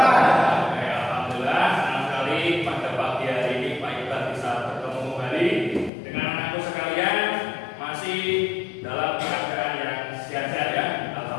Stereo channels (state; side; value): drops out; right; at 5.9 s